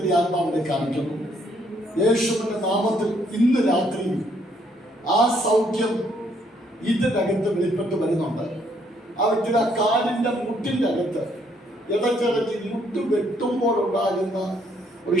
ആത്മാവിനെ കാണിക്കുന്നു. യേശുവിന്റെ നാമത്തിൽ ഇന്ന് രാത്രി ആ സൗഖ്യം ഇതിനകത്ത് വെളിപ്പെട്ട് വരുന്നുണ്ട്. ആ വ്യക്തിയുടെ കാലിന്റെ മുട്ടിന്റെ അകത്ത് ഇടയ്ക്കിടയ്ക്ക് മുട്ട് വെട്ടുമ്പോഴുണ്ടാകുന്ന ഒരു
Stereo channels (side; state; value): both; normal; correlation 0.69